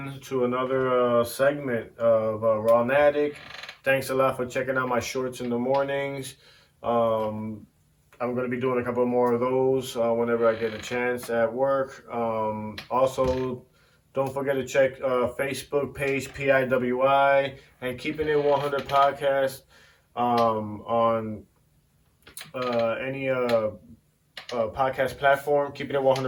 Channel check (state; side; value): identical; both; correlation 1.00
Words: to another segment of RAW-NATIK. Thanks a lot for checking out my shorts in the mornings. I'm going to be doing a couple more of those whenever I get a chance at work. Also, don't forget to check Facebook page, PIWI, and Keeping It 100 Podcast on any podcast platform. Keeping It